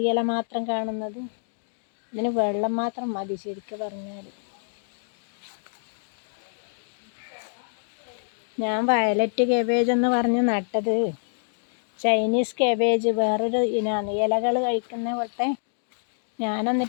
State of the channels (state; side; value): silent; right; digital silence